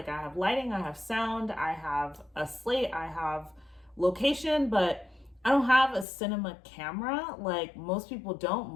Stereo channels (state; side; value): drops out; right; at 6.1 s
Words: I have lighting, I have sound, I have a slate, I have location, but I don't have a cinema camera. Like most people don't.